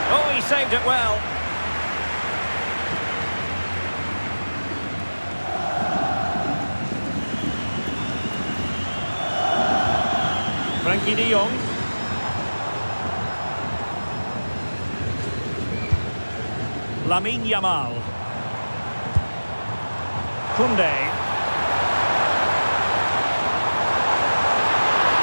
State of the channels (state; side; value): inverted; both; correlation -1.00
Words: Oh, he saved it well. Frankie de Jong. Lamine Yamal. Koundé.